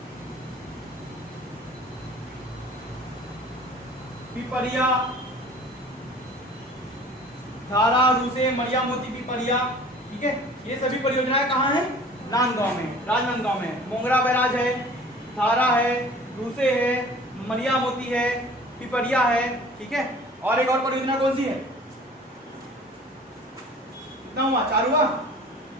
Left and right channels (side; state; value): both; normal; correlation 0.47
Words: पिपरिया, धारा, रूसे, मरिया मोती, पिपरिया, ठीक है। ये सभी परियोजनाएं कहाँ हैं? नांदगांव में, राजनांदगांव में। मोंगरा बैराज है, धारा है, रूसे है, मरिया मोती है, पिपरिया है, ठीक है। और एक और परियोजना कौन सी है? कितना हुआ? 4 हुआ?